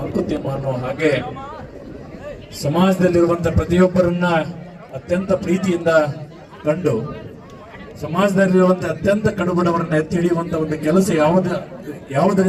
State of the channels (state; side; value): identical; both; correlation 1.00